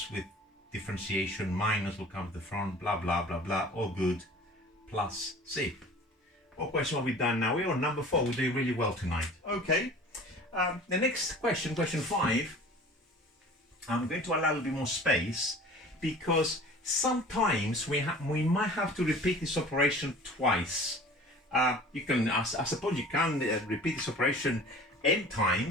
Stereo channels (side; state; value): both; normal; correlation 0.44